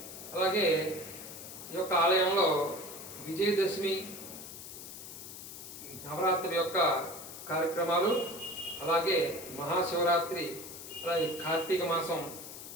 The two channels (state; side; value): noise; left; hiss, 12 dB below the sound